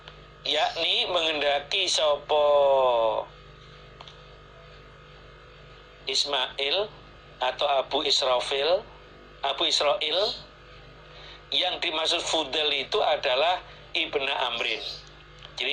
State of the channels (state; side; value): identical; both; correlation 1.00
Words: yakni mengendaki sapa Ismail atau Abu Israfil Abu Israil. Yang dimaksud Fudail itu adalah Ibnu Amrin.